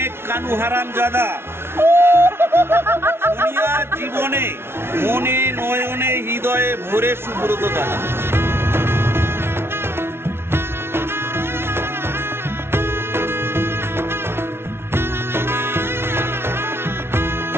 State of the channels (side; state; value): left; late; 0.12 ms